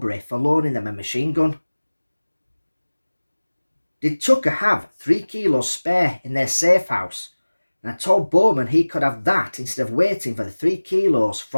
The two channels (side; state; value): both; inverted; correlation -1.00